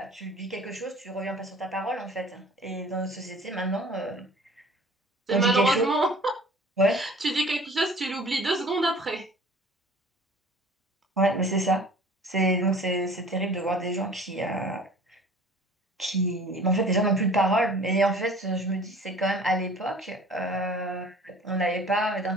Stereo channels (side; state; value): both; normal; correlation 0.47